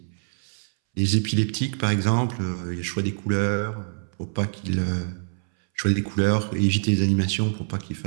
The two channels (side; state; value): left; silent; 62 dB below the other